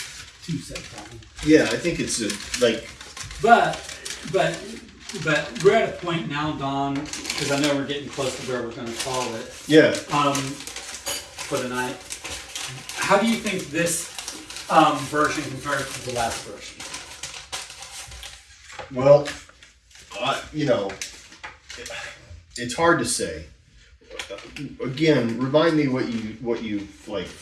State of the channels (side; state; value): both; identical; correlation 1.00